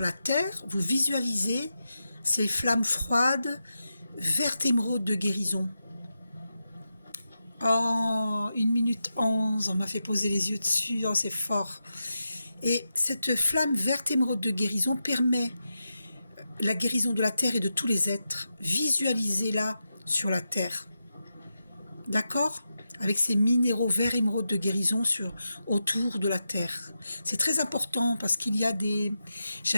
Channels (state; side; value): inverted; both; correlation -0.89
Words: terre, vous visualisez ces flammes froides, vert émeraude de guérison. Oh, 1 minute 11, on m'a fait poser les yeux dessus, oh, c'est fort. Et cette flamme verte émeraude de guérison permet la guérison de la terre et de tous les êtres. Visualisez-la sur la terre. D'accord? Avec ces minéraux verts émeraude de guérison autour de la terre. C'est très important parce qu'il y a des...